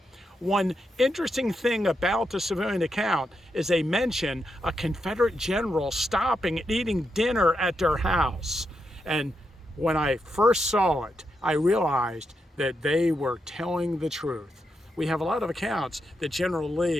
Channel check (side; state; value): both; normal; correlation 0.84